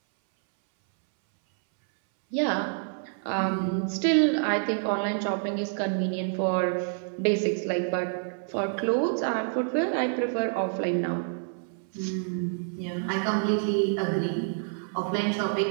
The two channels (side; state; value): left; silent; 60 dB below the other